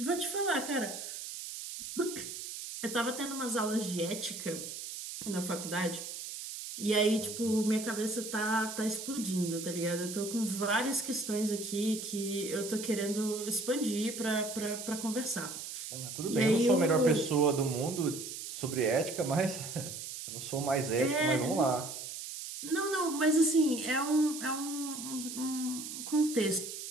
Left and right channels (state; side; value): noise; right; hiss, 8 dB below the sound